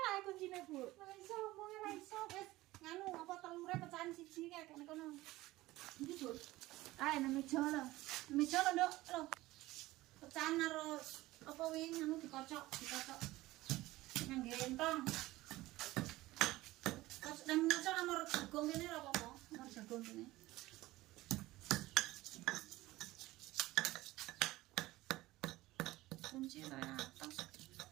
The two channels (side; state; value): left; quieter; 18.0 dB